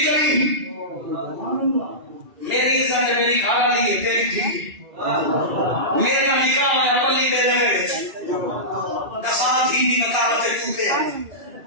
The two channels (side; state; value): left; late; 2.4 ms